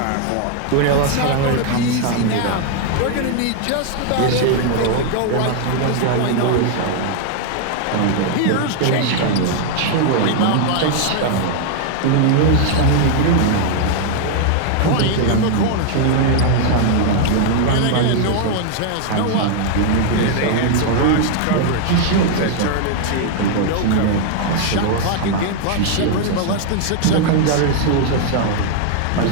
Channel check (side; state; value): both; different; correlation 0.00